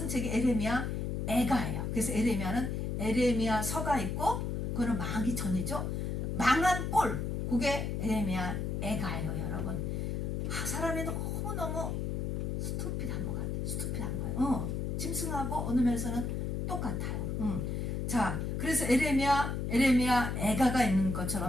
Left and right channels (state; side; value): noise; left; hum, 1 dB below the sound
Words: 책이 에레미야 애가예요. 그래서 에레미야는 에레미야 서가 있고 그거는 망하기 전이죠. 망한 꼴 그게 에레미야 애가예요, 여러분. 사람이 너무 스투피드한 것 같아요. 스투피드한 거예요. 짐승하고 어느 면에서는 똑같아요. 자, 그래서 에레미야 애가가 있는